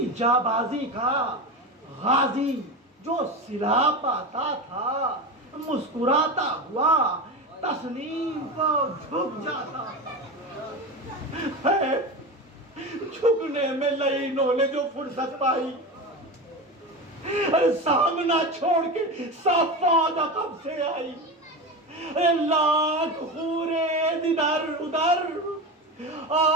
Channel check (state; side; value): normal; both; correlation 0.23